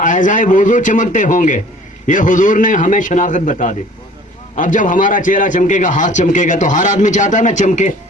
ऐज़ाए वुज़ू चमकते होंगे। ये हुजूर ने हमें शनाख्त बता दी। अब जब हमारा चेहरा चमकेगा, हाथ चमकेगा, तो हर आदमी चाहता है ना चमके।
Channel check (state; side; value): normal; both; correlation 0.50